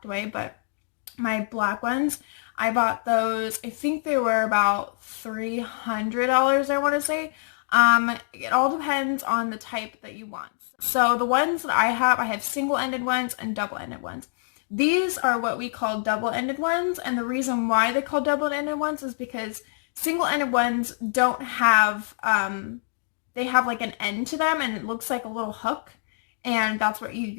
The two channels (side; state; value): right; silent; digital silence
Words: away, but my black ones, I bought those, I think they were about $300, I want to say. It all depends on the type that you want. So the ones that I have single-ended ones and double-ended ones. These are what we call double-ended ones, and the reason why they call double-ended ones is because single-ended ones don't have, they have like an end to them, and it looks like a little hook, and that's what you